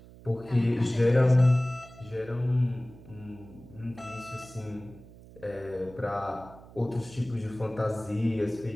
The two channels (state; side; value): noise; right; hum, 20 dB below the sound